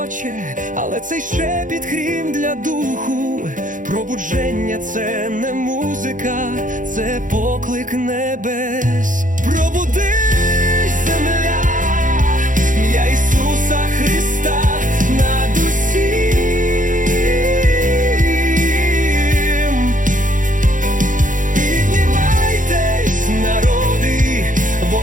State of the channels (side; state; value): left; late; 0.38 ms